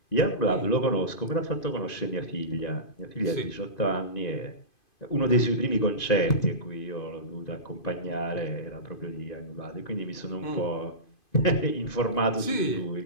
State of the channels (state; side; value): late; right; 2.5 ms